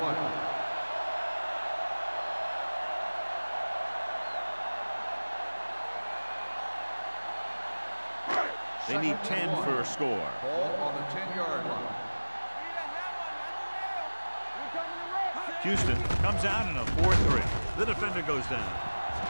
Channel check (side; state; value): both; inverted; correlation -1.00